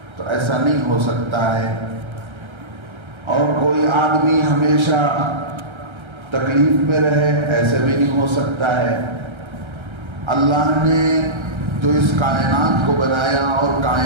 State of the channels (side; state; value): left; late; 1.3 ms